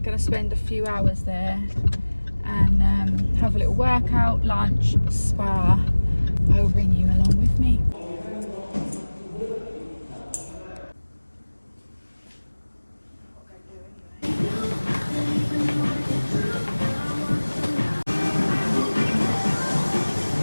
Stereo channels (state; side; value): inverted; both; correlation -1.00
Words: going to spend a few hours there and have a little workout, lunch, spa. I will bring you along with me.